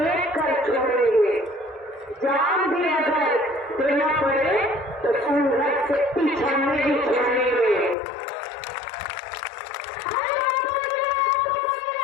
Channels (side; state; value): right; drops out; at 8.0 s